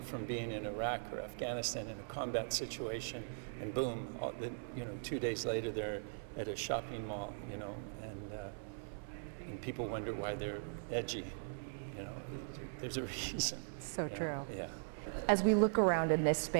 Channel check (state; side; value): silent; left; 51 dB below the other